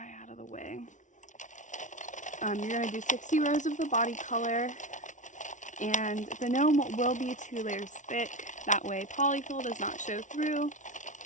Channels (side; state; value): right; late; 0.37 ms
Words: out of the way. You're going to do 60 rows of the body color. And the gnome will be 2 layers thick. That way polyfill does not show through.